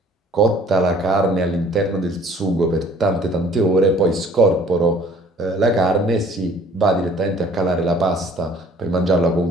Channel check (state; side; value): normal; both; correlation 0.54